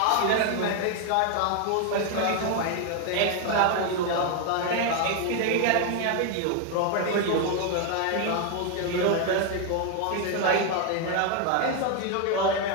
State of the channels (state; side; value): different; both; correlation 0.01